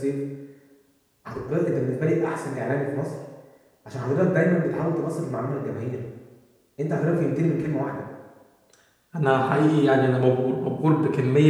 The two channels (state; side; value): identical; both; correlation 1.00